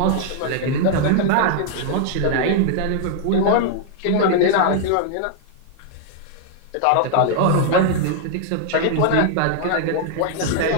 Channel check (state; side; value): different; both; correlation -0.01